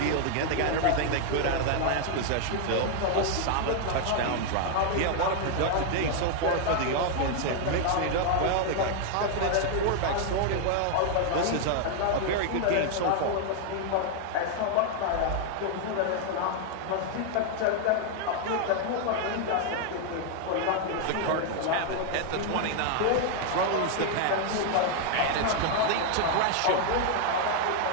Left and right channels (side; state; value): both; different; correlation 0.00